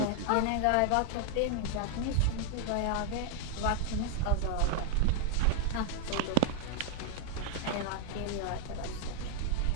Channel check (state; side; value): different; both; correlation 0.00